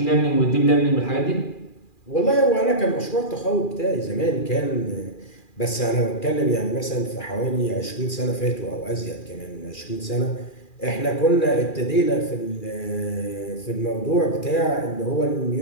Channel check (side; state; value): right; late; 2.4 ms